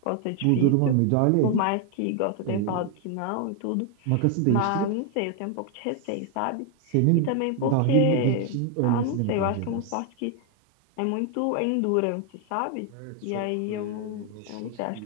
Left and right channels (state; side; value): different; both; correlation 0.01